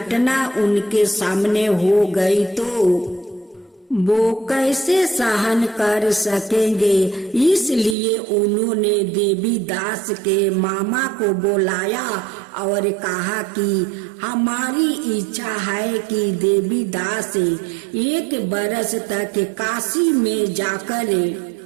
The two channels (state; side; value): drops out; left; at 8.0 s